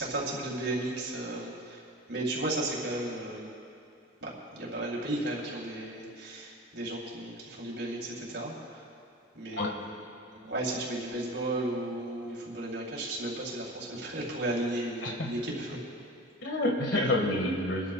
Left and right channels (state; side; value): normal; both; correlation 0.34